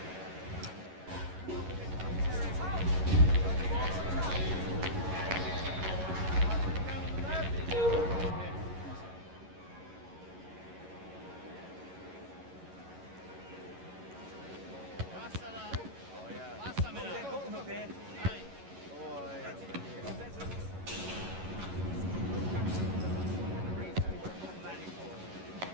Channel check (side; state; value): left; late; 11 ms